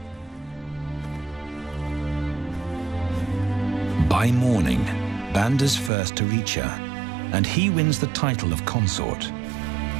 By morning, Banda's first to reach her, and he wins the title of consort.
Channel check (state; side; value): drops out; left; at 5.9 s